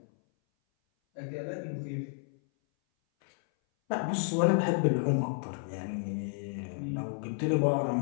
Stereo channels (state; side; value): silent; right; 57 dB below the other